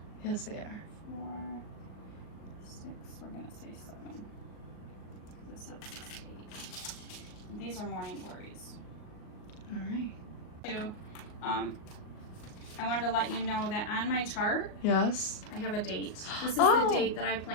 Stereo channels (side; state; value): right; late; 38 ms